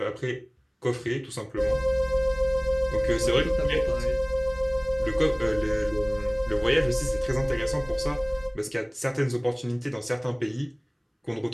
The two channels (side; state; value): both; identical; correlation 1.00